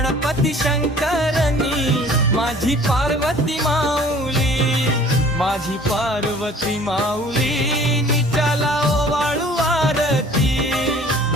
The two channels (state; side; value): normal; both; correlation 0.50